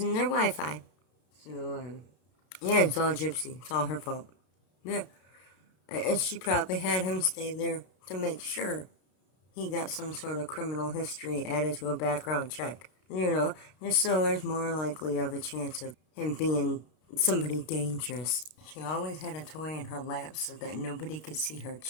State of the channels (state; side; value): late; right; 32 ms